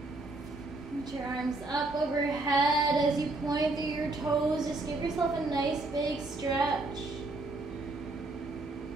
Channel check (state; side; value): quieter; left; 3.0 dB